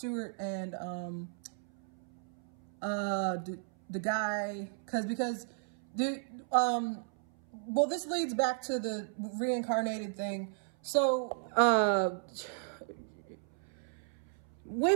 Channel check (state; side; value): silent; left; 55 dB below the other